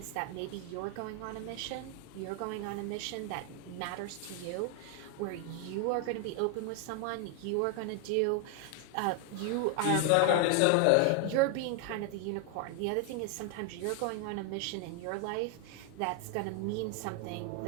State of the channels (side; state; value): both; different; correlation 0.00